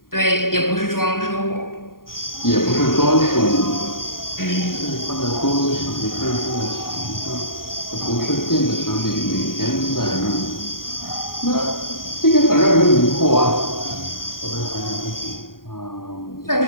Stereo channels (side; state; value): right; late; 0.91 ms